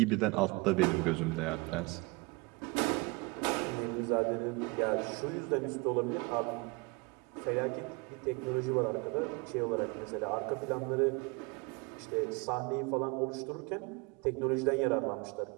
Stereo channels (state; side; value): quieter; left; 27.5 dB